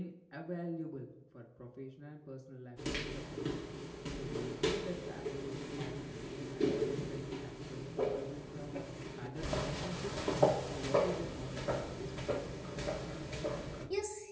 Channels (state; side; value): identical; both; correlation 1.00